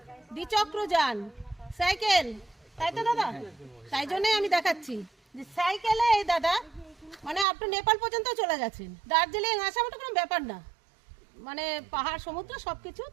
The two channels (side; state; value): left; drops out; at 7.5 s